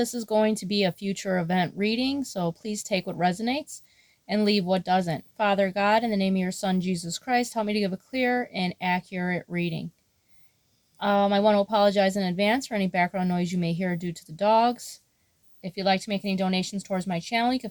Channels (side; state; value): both; identical; correlation 1.00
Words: is going to be a future event reading, so please take what resonates and leave what doesn't. Father God, in the name of your Son, Jesus Christ, help me to give a clear and accurate reading. I want to apologize in advance for any background noise you may hear due to the dogs. If you'd like to make any donations towards my channel, you can